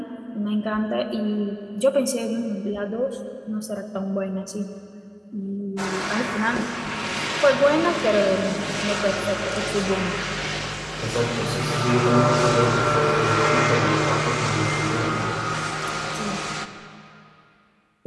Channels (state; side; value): identical; both; correlation 1.00